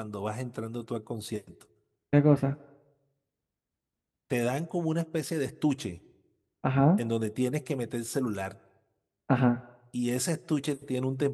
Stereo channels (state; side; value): identical; both; correlation 1.00